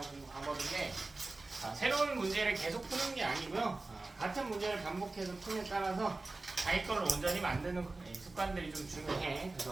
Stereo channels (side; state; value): left; quieter; 3.3 dB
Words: 공부 방법인데 새로운 문제를 계속 푸는 게 아니고요. 같은 문제를 반복해서 푸는 따라서 자기 걸로 온전히 만드는 습관들이 좀 중요해.